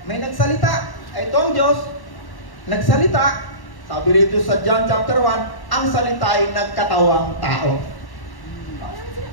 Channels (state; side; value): late; right; 1.1 ms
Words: May nagsalita. Ito ang Diyos, nagsalita. Sabi rito sa John chapter 1, ang salita ay nagkatawang tao.